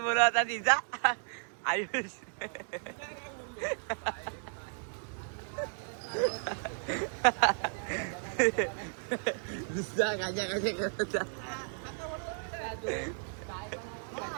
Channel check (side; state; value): left; silent; 55 dB below the other